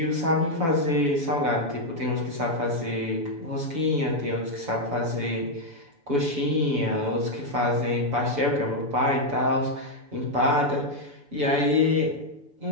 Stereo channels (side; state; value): left; late; 7.0 ms